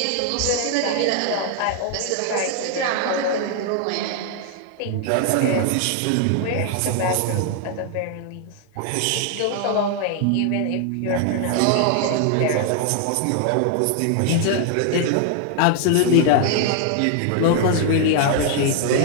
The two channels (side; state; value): both; different; correlation 0.00